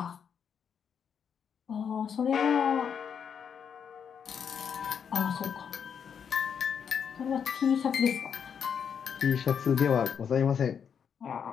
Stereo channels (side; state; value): right; quieter; 7.4 dB